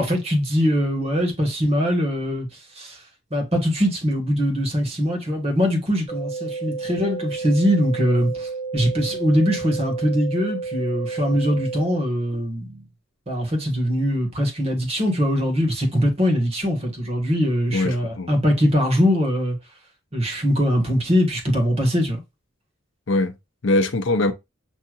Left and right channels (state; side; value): normal; both; correlation 0.77